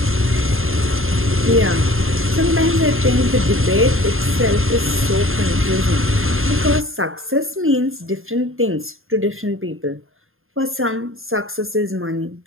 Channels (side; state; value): left; late; 0.60 ms